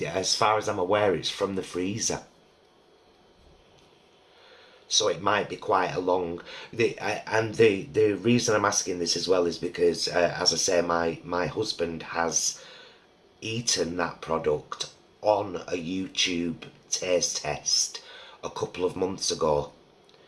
as far as I'm aware, it's from the freezer. So it might be quite a long... The reason I'm asking this as well is because, as I say, my husband has eaten that product on a YouTube taste test a couple of months ago.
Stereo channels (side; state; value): both; identical; correlation 1.00